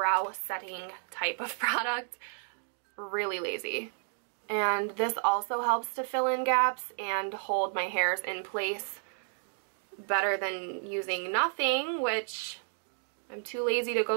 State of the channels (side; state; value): left; silent; digital silence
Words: setting type of product. Really lazy. And this also helps to fill in gaps and hold my hairs in place better than using nothing, which I'm too lazy to